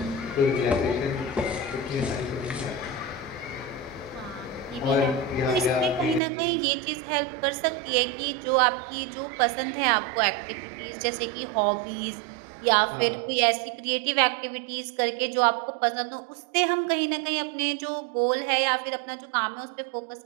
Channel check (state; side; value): drops out; left; at 6.2 s